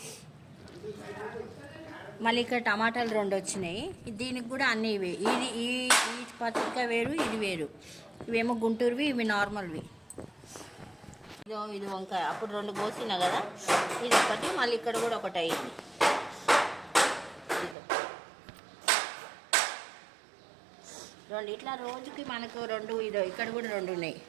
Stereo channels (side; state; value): left; drops out; at 17.8 s